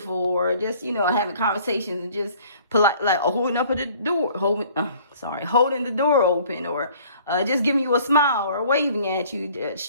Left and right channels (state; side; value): inverted; both; correlation -0.53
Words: or just having conversations and just polite, like holding up at the door, holding the door open, or just giving you a smile or waving at you.